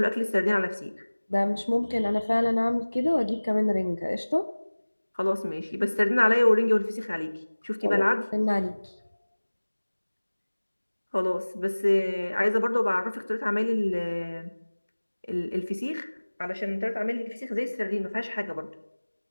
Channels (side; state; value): both; inverted; correlation -1.00